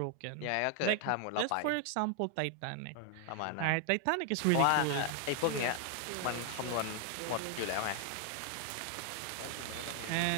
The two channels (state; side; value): different; both; correlation 0.00